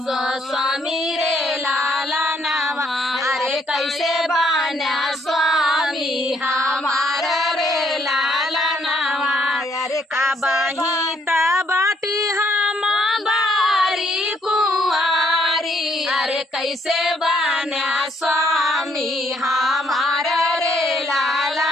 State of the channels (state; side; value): normal; both; correlation 0.69